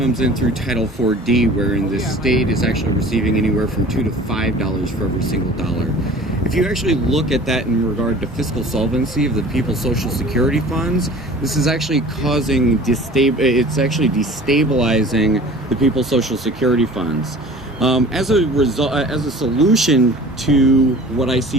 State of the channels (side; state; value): both; normal; correlation 0.44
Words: in through Title 4D, wherein the state is actually receiving anywhere from $2 to $5 for every single dollar. If you actually look at that in regard to fiscal solvency of the people's Social Security funds, this is actually it's actually destabilizing the people's Social Security funds. As a solution to what I